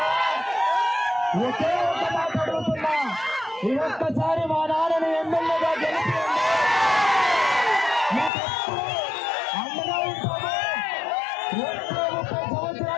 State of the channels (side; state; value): right; drops out; at 8.3 s